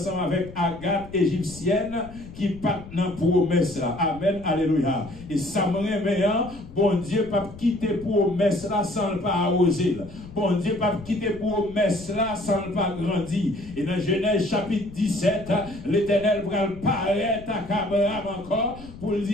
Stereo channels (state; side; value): noise; left; rumble, 16 dB below the sound